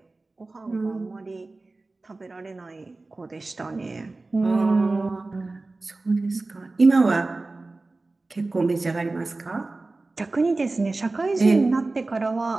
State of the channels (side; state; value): left; quieter; 3.3 dB